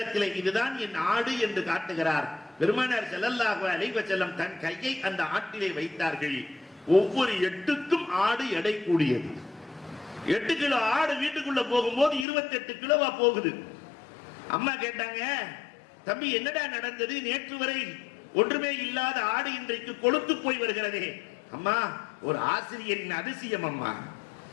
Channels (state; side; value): drops out; right; at 12.2 s